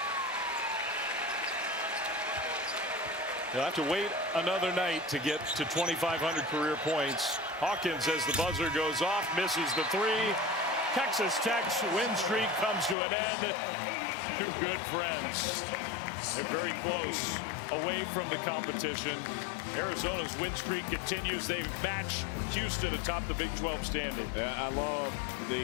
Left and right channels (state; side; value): drops out; right; at 13.0 s